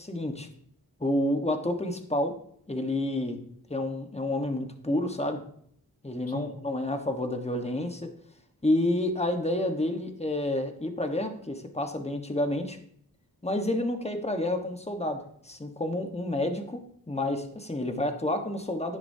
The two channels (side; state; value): both; normal; correlation 0.58